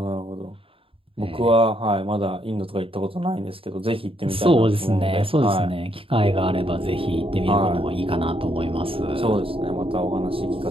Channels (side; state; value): left; late; 0.27 ms